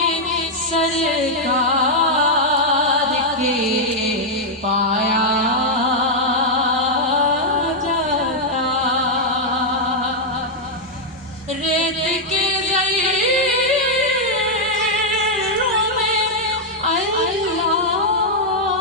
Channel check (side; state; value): both; normal; correlation -0.02